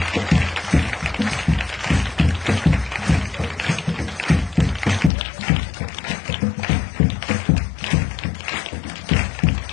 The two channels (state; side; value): drops out; right; at 5.1 s